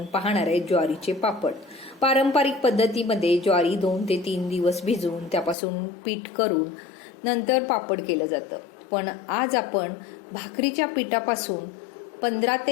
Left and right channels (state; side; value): drops out; right; at 5.6 s